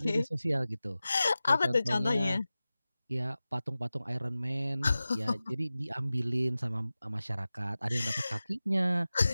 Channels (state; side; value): inverted; both; correlation -0.96